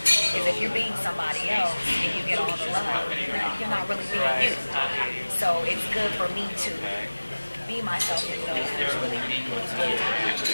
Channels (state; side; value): inverted; both; correlation -1.00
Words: because if you're being somebody else and you get all the love, you're not really being you. So it's good for me to be myself and know who's really with me.